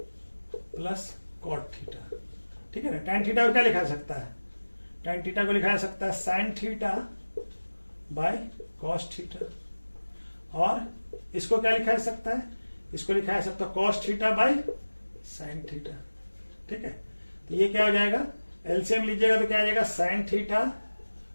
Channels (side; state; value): both; inverted; correlation -1.00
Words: plus cot theta. ठीक है ना, tan थीटा को क्या लिखा सकता है, tan थीटा को लिखा जा सकता है sine theta by cos theta, और इसको क्या लिखा जा सकता है, इसको लिखा जा सकता है cos theta by sine theta. ठीक है, तो ये क्या हो जाएगा, एलसीएम लीजिएगा तो क्या आ जाएगा sign theta